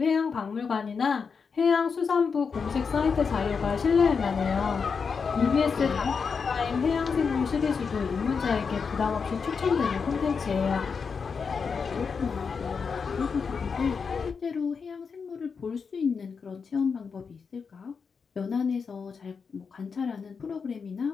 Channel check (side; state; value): right; quieter; 5.6 dB